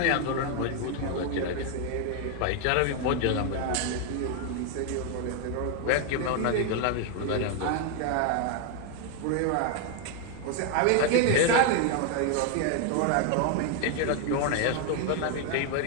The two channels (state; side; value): different; both; correlation 0.01